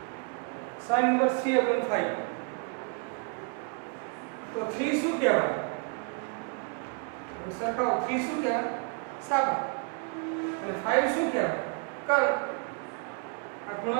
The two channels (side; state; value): left; quieter; 38.1 dB